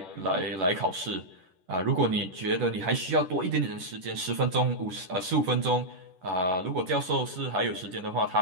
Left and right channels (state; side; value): late; left; 10 ms